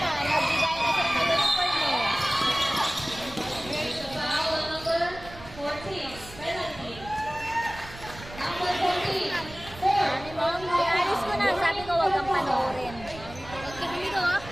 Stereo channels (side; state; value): right; noise; rumble, 16 dB below the sound